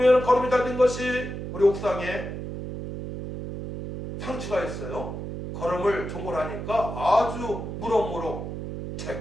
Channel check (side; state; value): right; noise; hum, 7 dB below the sound